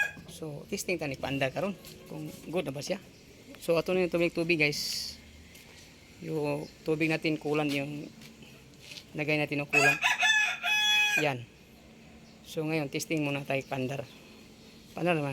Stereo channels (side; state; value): both; identical; correlation 1.00